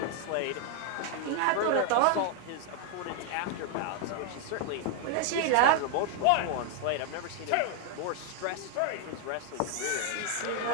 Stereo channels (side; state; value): both; different; correlation 0.00